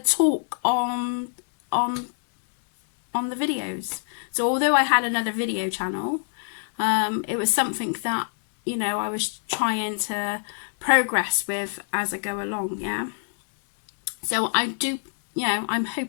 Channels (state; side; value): silent; right; digital silence